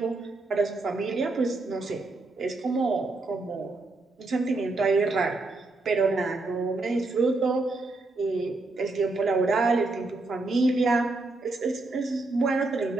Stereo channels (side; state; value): left; quieter; 3.2 dB